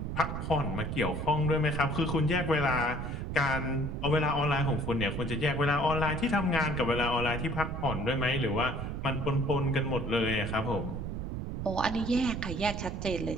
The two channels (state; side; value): noise; right; rumble, 4 dB below the sound